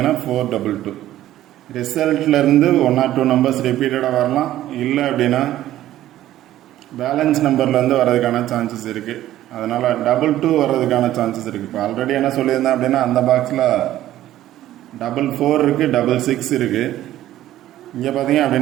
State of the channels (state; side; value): quieter; left; 13.6 dB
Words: 422. ரிசல்ட்லேருந்து 1 or 2 நம்பர்ஸ் ரிப்பீட்டடாக வரலாம். இல்லை அப்படின்னா பேலன்ஸ் நம்பர்லேருந்து வர்றதுக்கான சான்சஸ் இருக்குது. அதனால் 22 வர்றதுக்கான சான்சஸ் இருக்குது. இப்போ ஆல்ரெடி என்ன சொல்லியிருந்தேன் அப்படின்னா அந்த பாக்ஸில் 44 இருக்குது, 66 இருக்குது. இங்கே பார்த்தீங்க